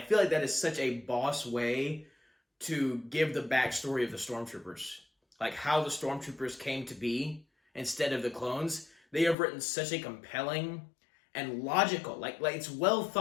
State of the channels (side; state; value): right; drops out; at 9.3 s